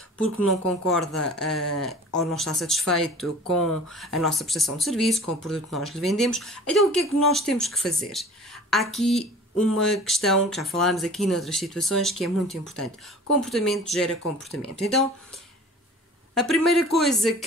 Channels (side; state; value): both; normal; correlation 0.44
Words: porque não concorda ou não está satisfeito com a nossa prestação de serviço, com o produto que nós lhe vendemos. Então o que é que nós temos que fazer? Há aqui uma questão que já falámos aqui noutras situações que é muito importante. Comportamento gera comportamento. Então, a primeira coisa